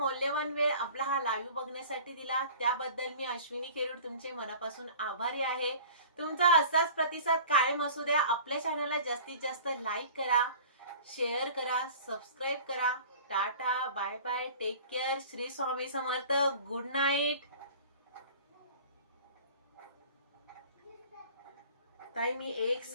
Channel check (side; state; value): both; inverted; correlation -0.43